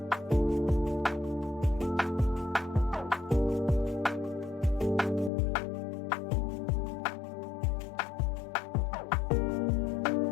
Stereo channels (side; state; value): right; drops out; at 5.3 s